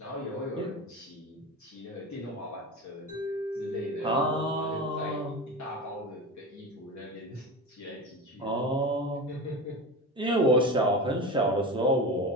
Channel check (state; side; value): normal; both; correlation 0.27